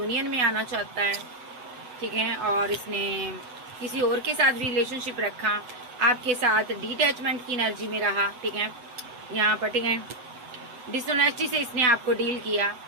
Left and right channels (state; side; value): late; left; 8.0 ms